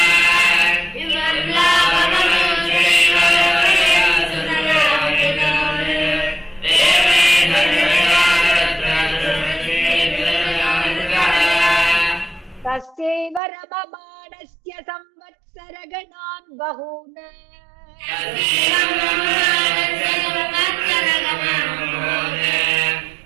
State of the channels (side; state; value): left; drops out; at 13.4 s